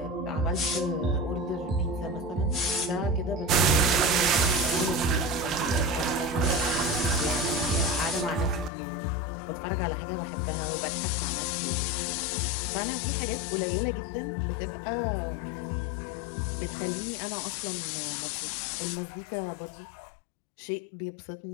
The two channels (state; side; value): drops out; right; at 8.7 s